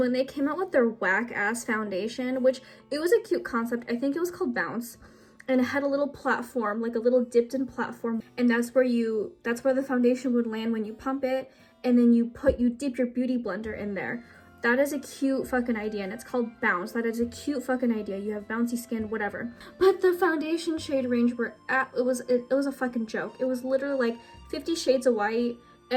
they came out with their whack ass foundation, which it was a cute concept. I think it was called Bounce. And it had a little platform, like a little dipped in platform, and that's where the foundation would land when you pump it, and then you dip your Beauty Blender in there. That is a cute fucking idea, and it's called Bounce. That is a cute fucking idea. You have bouncy skin, whatever. But the foundation shade range it was a fucking joke. It was literally like 50 shades of white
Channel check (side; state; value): both; identical; correlation 1.00